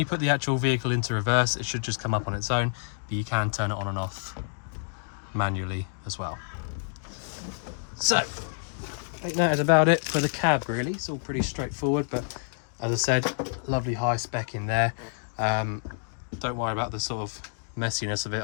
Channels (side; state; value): right; silent; digital silence